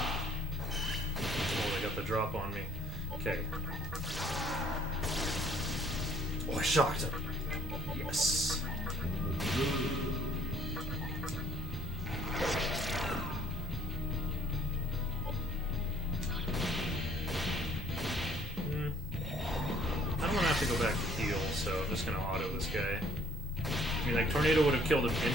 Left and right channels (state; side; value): normal; both; correlation 0.58